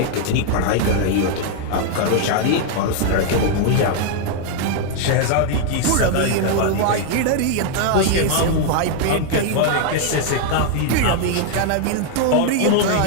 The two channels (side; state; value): both; different; correlation 0.00